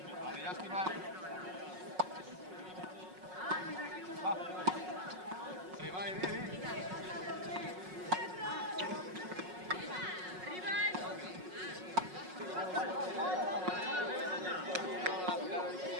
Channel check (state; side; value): late; left; 5.5 ms